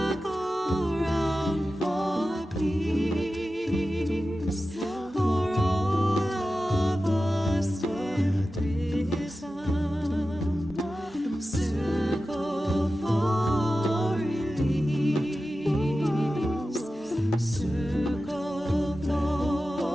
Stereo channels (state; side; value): normal; both; correlation 0.94